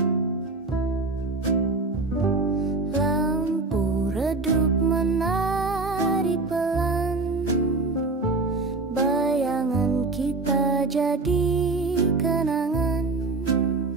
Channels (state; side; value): quieter; left; 3.5 dB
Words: Lampu redup menari pelan, bayangan kita jadi kenangan.